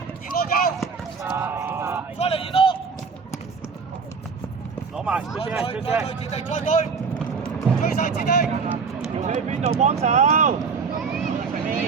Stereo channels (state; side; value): quieter; left; 5.3 dB